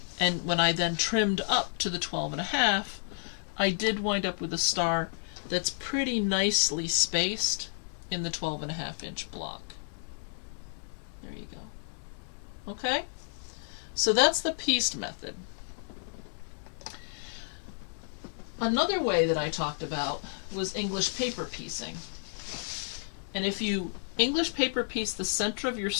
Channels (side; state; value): right; silent; digital silence